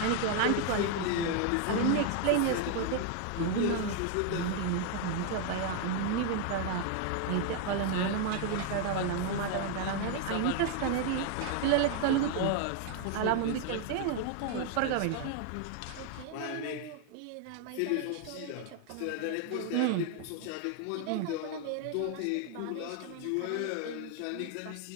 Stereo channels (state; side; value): different; both; correlation 0.00